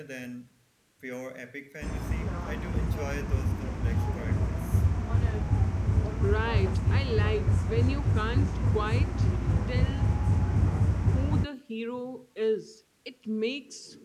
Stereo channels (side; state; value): both; identical; correlation 1.00